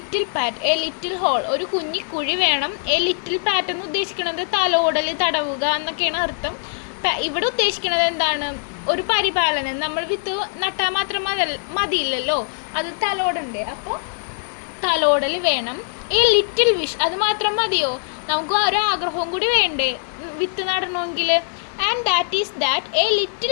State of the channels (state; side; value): silent; right; digital silence